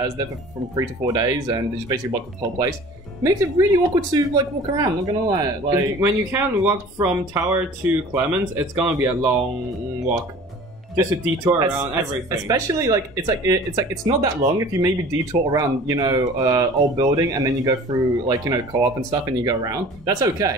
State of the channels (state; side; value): normal; both; correlation 0.45